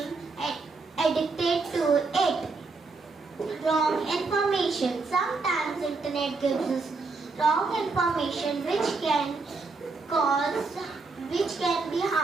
addicted to it. Wrong information. Sometimes internet gives us wrong information which can be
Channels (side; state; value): left; quieter; 4.0 dB